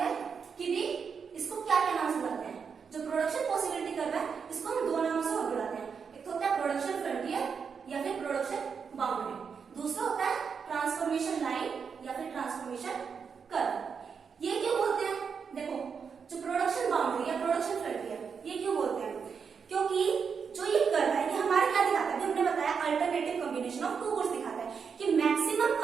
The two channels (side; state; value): left; quieter; 6.2 dB